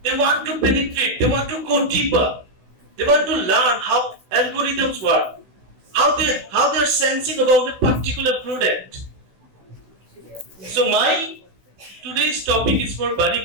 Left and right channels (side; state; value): left; late; 16 ms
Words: They want to penetrate, they want to go deeper, they want to learn how algorithms work, how they're sensing about a particular product. So my today's topic is for